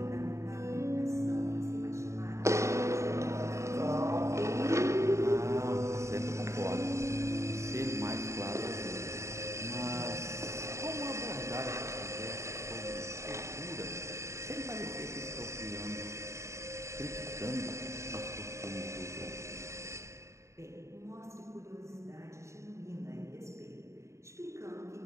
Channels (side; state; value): left; late; 0.14 ms